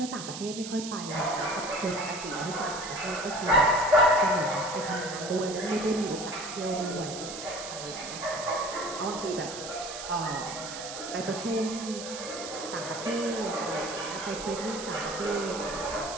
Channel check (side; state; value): right; noise; hiss, 9 dB below the sound